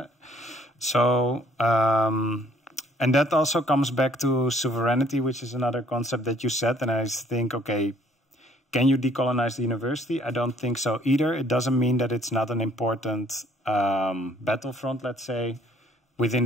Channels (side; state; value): both; normal; correlation 0.61